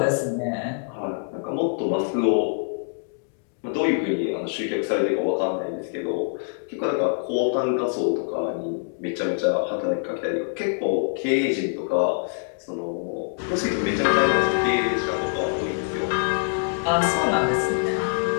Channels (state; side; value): silent; right; digital silence